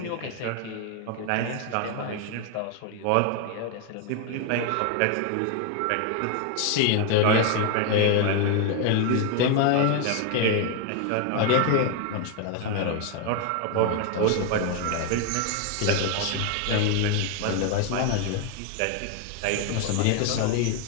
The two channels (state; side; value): different; both; correlation 0.01